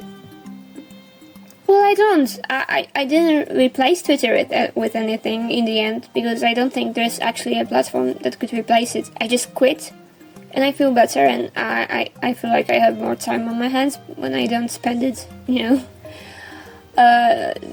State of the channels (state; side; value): identical; both; correlation 1.00